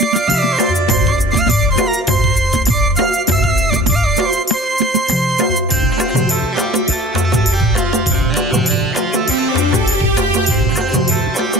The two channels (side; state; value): both; normal; correlation 0.47